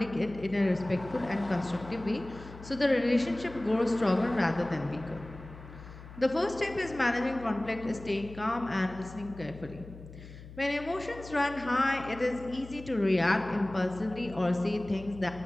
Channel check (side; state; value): left; noise; hum, 16 dB below the sound